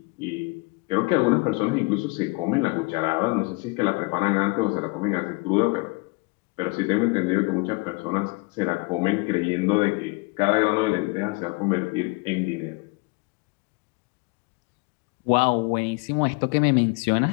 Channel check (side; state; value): right; quieter; 28.6 dB